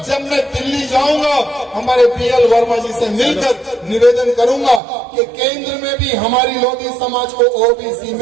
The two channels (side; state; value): left; drops out; at 4.8 s